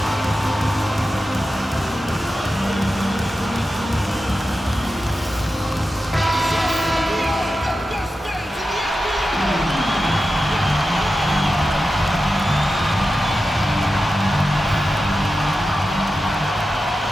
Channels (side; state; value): both; normal; correlation 0.91